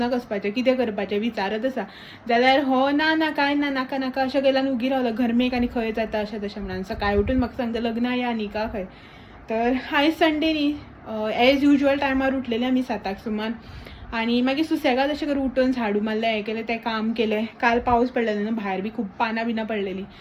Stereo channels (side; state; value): both; identical; correlation 1.00